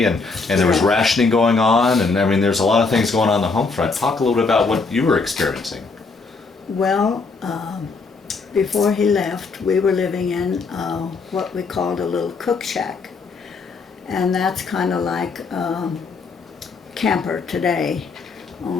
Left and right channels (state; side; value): quieter; right; 4.3 dB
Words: and there was rationing going on? And I mean, there's a lot of things going on the home front. Talk a little bit about what you were experiencing. well, before he left, we were living in what we called a little cook shack. And that's kind of like camper today,